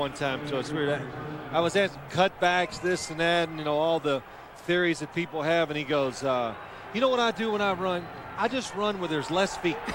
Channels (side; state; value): both; identical; correlation 1.00